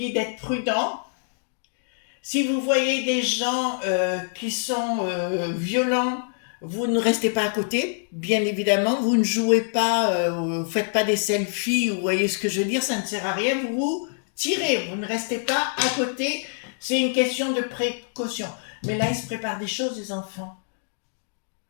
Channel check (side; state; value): right; silent; digital silence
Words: d'être prudent. Si vous voyez des gens qui sont violents, vous ne restez pas à côté, bien évidemment. Vous ne jouez pas, vous faites pas des selfies, vous voyez ce que je veux dire, ça ne sert à rien. Vous tirez, vous ne restez pas à côté. C'est une question de précaution. Mais là, ils se préparent des choses, les enfants.